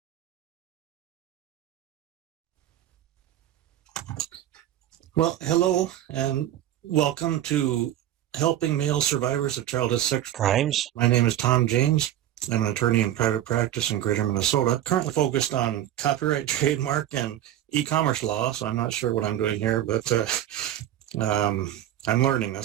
Well, hello and welcome to Helping Male Survivors of Childhood Sex Crimes. My name is Tom James. I'm an attorney in private practice in Greater Minnesota, currently focused on copyright, trademark, and e-commerce law, so I'm not sure what I'm doing here, but I'm learning.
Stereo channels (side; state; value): left; quieter; 12.3 dB